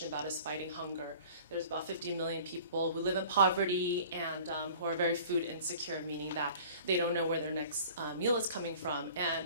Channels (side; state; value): both; inverted; correlation -0.46